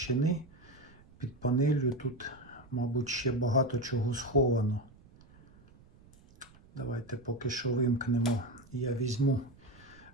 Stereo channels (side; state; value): right; noise; rumble, 25 dB below the sound